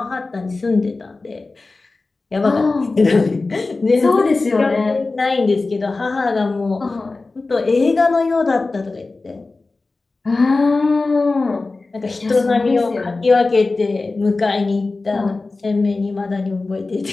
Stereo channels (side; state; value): right; quieter; 3.6 dB